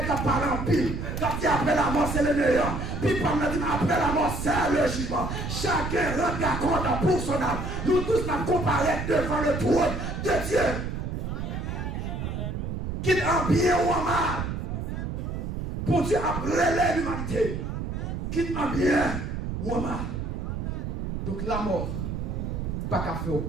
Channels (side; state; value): right; noise; rumble, 4 dB below the sound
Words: quand parler en pile. Quand dit après la mort, c'est le meilleur. Puis pendant dit après la mort, c'est le jugement. Chacun rendra compte pour son âme. Nous tous nous comparés devant le trône de Dieu. Qu'il en bien ou en mal. Pour Dieu a relève l'humanité. Qu'il en bien ou en mal. Donc la mort, pas qu'à faire